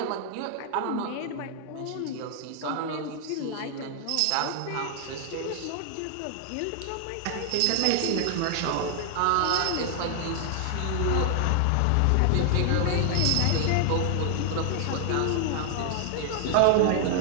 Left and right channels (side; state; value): both; different; correlation 0.00